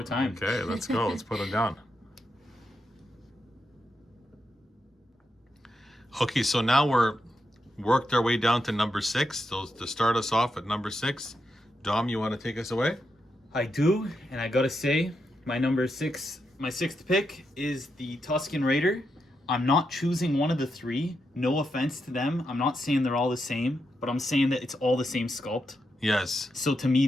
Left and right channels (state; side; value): normal; both; correlation 0.84